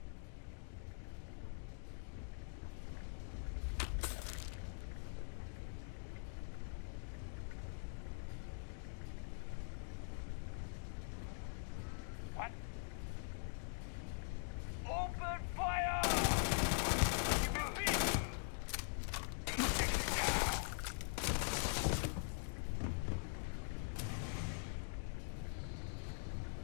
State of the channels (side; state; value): right; silent; digital silence